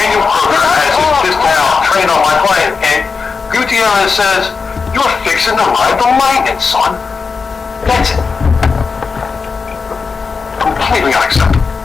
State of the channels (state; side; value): quieter; right; 5.0 dB